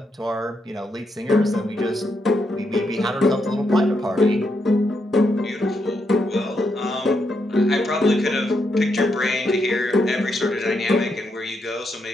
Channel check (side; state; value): both; normal; correlation 0.80